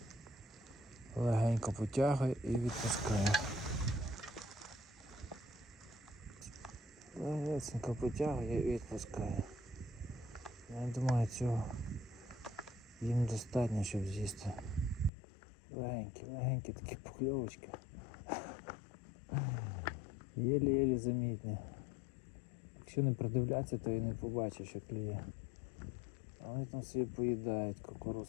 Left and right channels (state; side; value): drops out; right; at 15.1 s